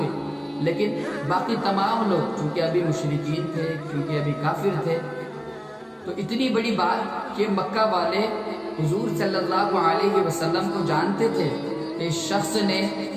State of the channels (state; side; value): identical; both; correlation 1.00